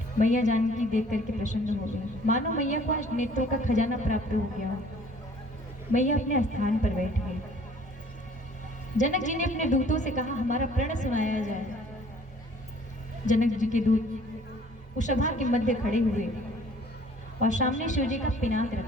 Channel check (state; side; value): normal; both; correlation 0.54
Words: मैया जानकी देख करके प्रसन्न हो गई, मानो मैया को आज नेत्रों का खजाना प्राप्त हो गया। मैया अपने स्थान पर बैठ गई। जनक जी ने अपने दूतों से कहा, हमारा प्रण सुनाया जाए। जनक जी के दूत उस सभा के मध्य खड़े हुए और सामने शिव जी का पिनाक